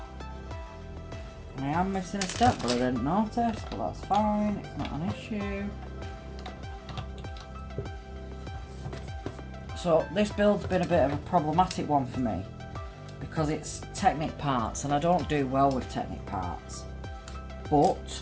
I am missing a step, but I didn't notice, but that's fine, it's not an issue. So this build's been a bit of a problematic one for me because it's Technic parts and I don't do well with Technic parts, but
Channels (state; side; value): identical; both; correlation 1.00